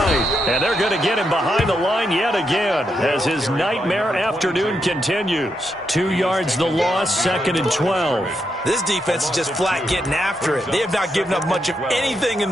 And they're going to get him behind the line yet again as his nightmare afternoon continues. 2 yards the loss, 2nd and 12. This defense is just flat getting after it. They have not given up much of anything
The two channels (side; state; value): both; normal; correlation 0.82